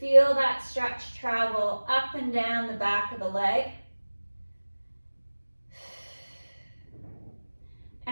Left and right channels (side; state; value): both; inverted; correlation -1.00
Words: that stretch travel up and down the back of the leg.